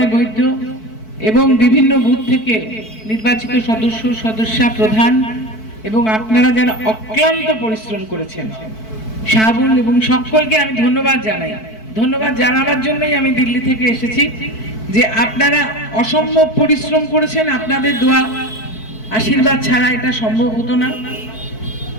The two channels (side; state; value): right; late; 4.6 ms